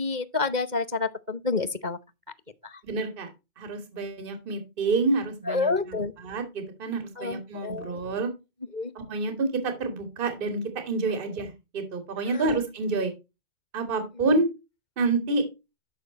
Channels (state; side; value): late; left; 2.1 ms